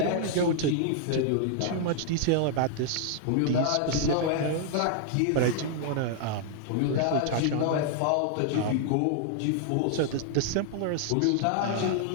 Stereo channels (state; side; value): different; both; correlation -0.01